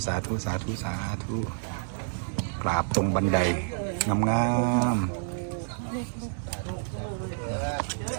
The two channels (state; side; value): silent; left; 59 dB below the other